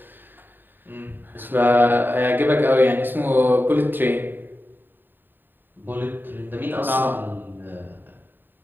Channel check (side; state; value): left; late; 0.093 ms